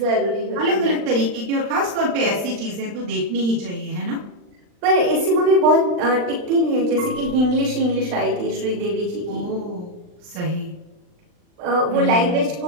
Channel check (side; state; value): left; late; 39 ms